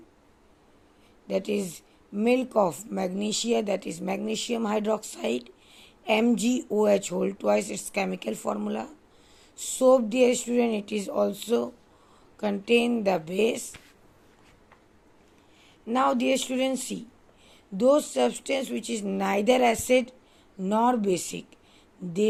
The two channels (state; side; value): identical; both; correlation 1.00